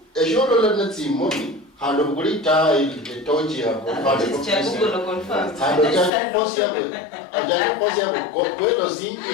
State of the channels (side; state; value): right; drops out; at 6.1 s